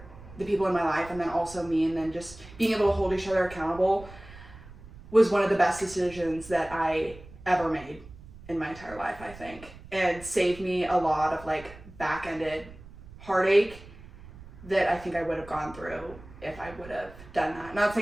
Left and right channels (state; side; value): noise; right; rumble, 18 dB below the sound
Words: the people in my life, and then also me, and then just being able to hold each other accountable was one of the best decisions that I ever made in my entire life, I think. And saved me a lot of, like, back-ended heartache that I think I would have gone through if I would have done that. Not